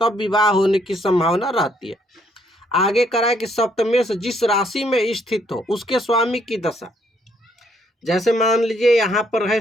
तब विवाह होने की संभावना रहती है। आगे करा कि सप्तमेश जिस राशि में स्थित हो उसके स्वामी की दशा, जैसे मान लीजिए यहाँ पर है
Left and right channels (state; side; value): normal; both; correlation 0.69